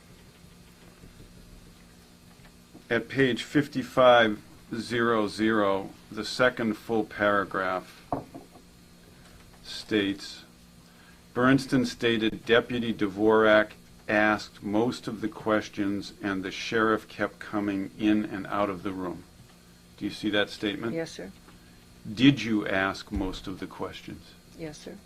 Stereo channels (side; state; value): both; identical; correlation 1.00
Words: At page 5500, the second full paragraph states, Bernstein stated Deputy Dvorak asked most of the questions and the sheriff kept coming in and out of the room. Do you see that statement? Yes, sir. Did you ask most of the questions? Yes, sir.